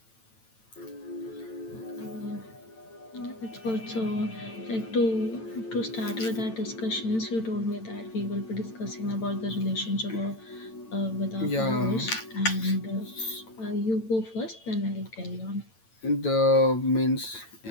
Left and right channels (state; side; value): late; right; 8.9 ms